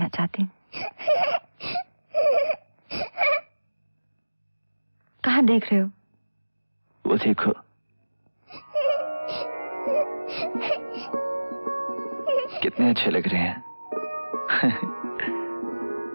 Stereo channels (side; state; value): both; inverted; correlation -1.00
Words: चाहती हूँ। कहाँ देख रहे हो? वो देखो। कितने अच्छे लग रहे हैं।